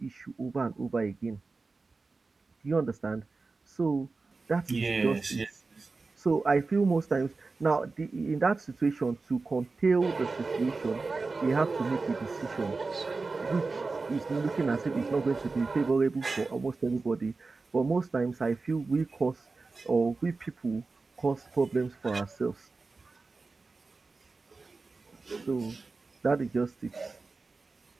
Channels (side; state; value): left; quieter; 3.9 dB